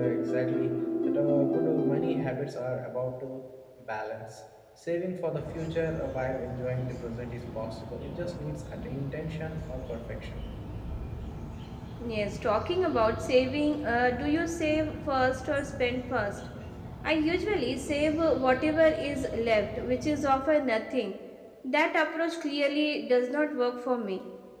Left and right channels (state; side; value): identical; both; correlation 1.00